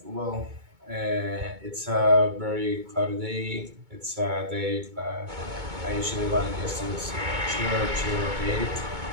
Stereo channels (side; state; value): left; late; 2.2 ms